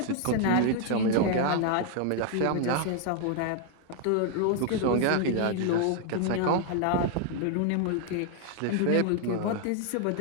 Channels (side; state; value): both; different; correlation 0.00